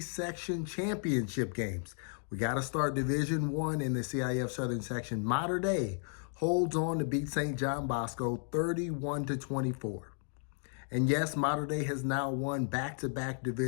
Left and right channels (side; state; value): right; silent; 55 dB below the other